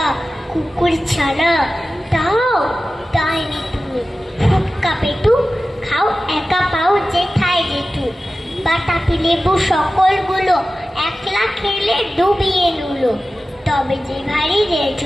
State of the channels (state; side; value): normal; both; correlation 0.95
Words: কুকুর ছানা তাও তাইনি তুমি, ফুটকা পেটু খাও একা পাও যেথায় যেটু, বাতাবি লেবু সকলগুলো একলা খেলে ডুবিয়ে নুলো, তবে যে ভারী রে